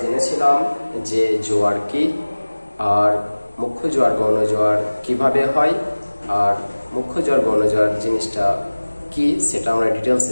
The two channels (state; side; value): inverted; both; correlation -1.00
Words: জেনেছিলাম যে জোয়ার কি, আর মুখ্য জোয়ার গৌণ জোয়ার কিভাবে হয়, আর মুখ্য জোয়ার গৌণ জোয়ার জিনিসটা কি সেটা আমরা